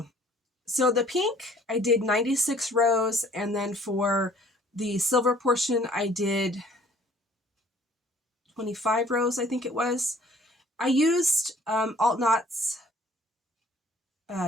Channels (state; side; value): normal; both; correlation 0.56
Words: So the pink, I did 96 rows. And then for the silver portion, I did 25 rows, I think it was. I used Alt Knots